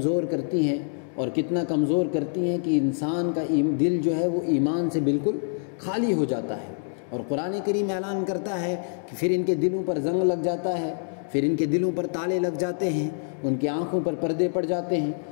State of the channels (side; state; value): right; silent; digital silence